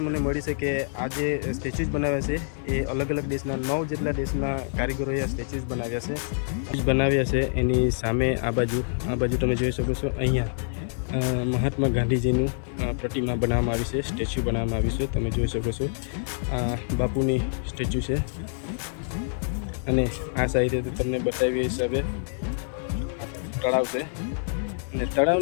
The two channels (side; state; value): right; silent; digital silence